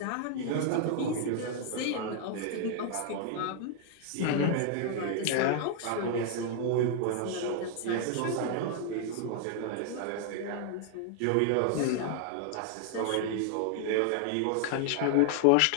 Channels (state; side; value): different; both; correlation 0.00